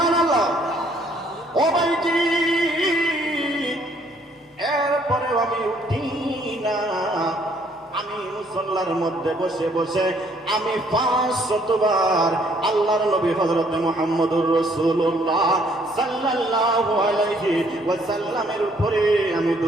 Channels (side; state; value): both; normal; correlation 0.64